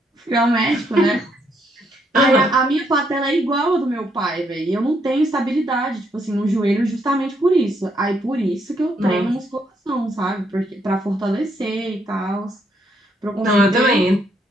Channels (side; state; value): both; normal; correlation 0.74